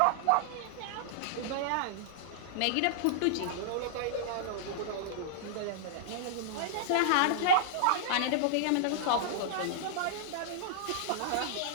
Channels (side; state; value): both; different; correlation -0.01